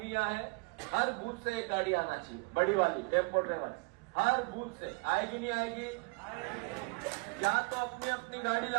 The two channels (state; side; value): quieter; left; 30.4 dB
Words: यहाँ है। हर बूथ से एक गाड़ी आना चाहिए, बड़ी वाली टेम्पो ड्राइवर। हर बूथ से आएगी, नहीं आएगी? या तो अपनी अपनी गाड़ी